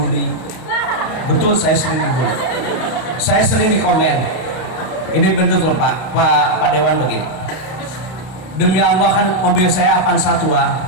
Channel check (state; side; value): late; right; 32 ms